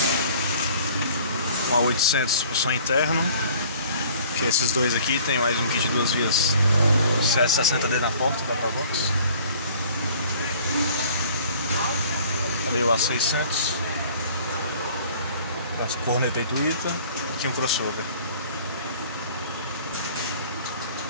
Uma 800 pro som interno. Que esses dois aqui tem mais um kit de 2 vias CS60D na porta da Provox. Ali o A600. As corneta e tuita. Aqui um crossover.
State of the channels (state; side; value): inverted; both; correlation -0.52